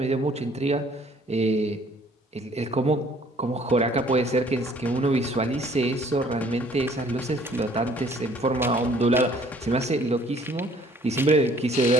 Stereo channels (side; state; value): both; normal; correlation 0.58